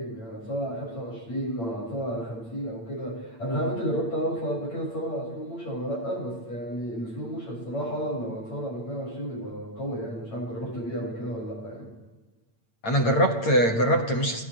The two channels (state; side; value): late; right; 8.8 ms